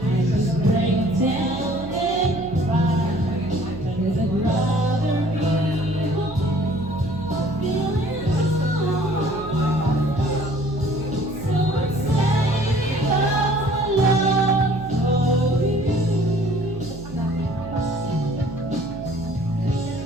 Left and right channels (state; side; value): noise; right; hum, 15 dB below the sound